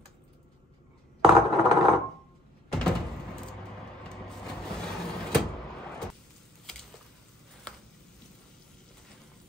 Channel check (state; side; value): normal; both; correlation 0.59